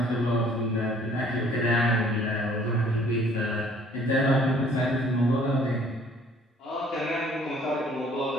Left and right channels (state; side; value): normal; both; correlation 0.57